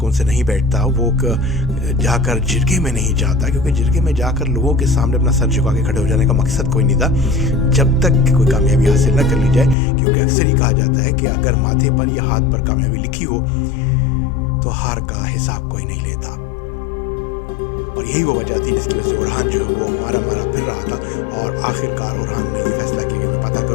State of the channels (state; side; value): drops out; right; at 9.8 s